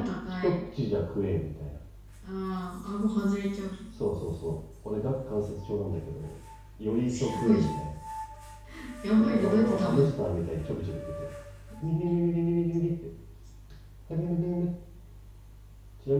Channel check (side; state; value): both; identical; correlation 1.00